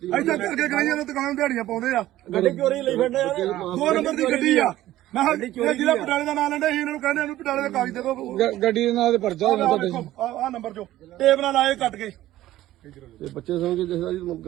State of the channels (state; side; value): quieter; left; 14.8 dB